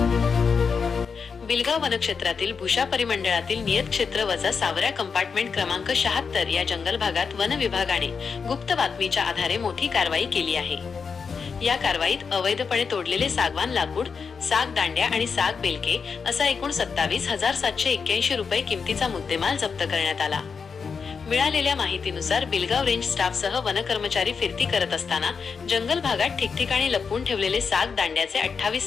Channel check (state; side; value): quieter; right; 5.6 dB